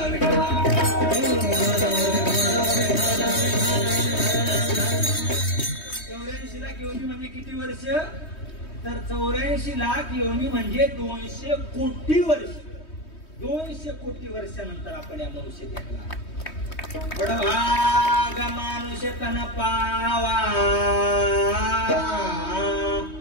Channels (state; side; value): late; right; 3.2 ms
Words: 84 लाख योनी म्हणजे किती वर्ष? तर 84 लाख योनी म्हणजे 200 कोटी वर्ष. 200 कोटी वर्षानंतर आपण या मनुष्य देखला. बडभाग मानुष तन पावा,